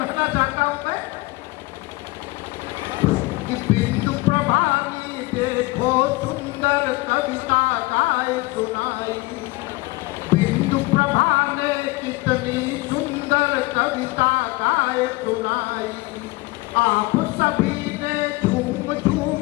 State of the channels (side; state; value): right; quieter; 22.7 dB